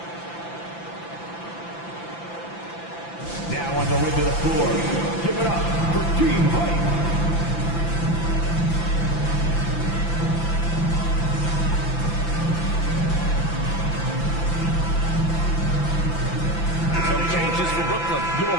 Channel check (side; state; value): right; late; 5.9 ms